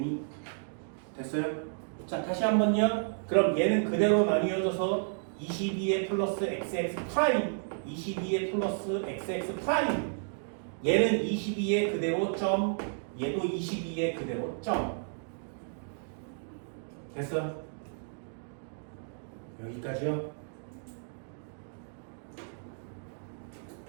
됐어요? 자, 다시 한번요. 그럼 얘는 그대로 나뉘어져서 22에 플러스 XX 프라임, 22에 플러스 XX 프라임. 얘는 22에 그대로 점, 얘도 22에 그대로 점. 됐어? 여기까지요.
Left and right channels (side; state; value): left; silent; digital silence